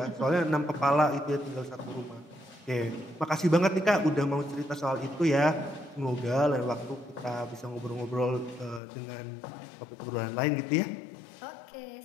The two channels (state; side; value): drops out; right; at 8.8 s